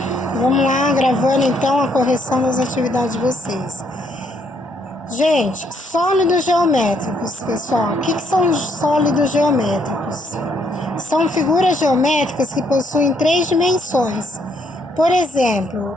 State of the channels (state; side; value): normal; both; correlation 0.71